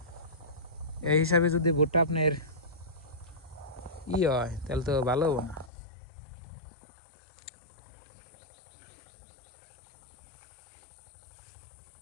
এই হিসাবে যদি ভুট্টা আপনার হয় তাহলে তো ভালো হবো না।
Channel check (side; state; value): right; drops out; at 5.7 s